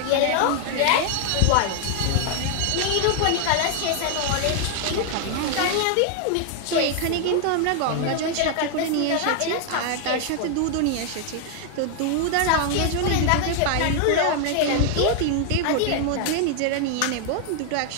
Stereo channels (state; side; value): different; both; correlation 0.00